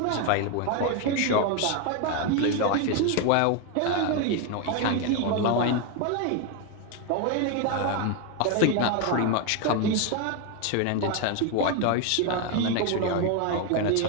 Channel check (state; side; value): different; both; correlation 0.02